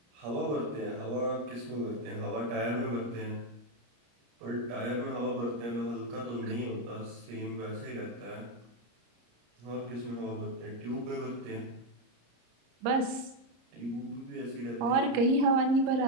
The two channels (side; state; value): left; late; 34 ms